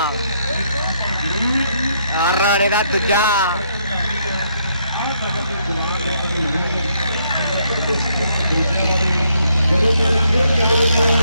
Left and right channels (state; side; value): inverted; both; correlation -0.73